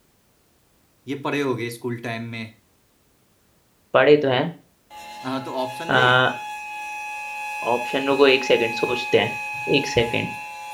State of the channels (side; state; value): both; identical; correlation 1.00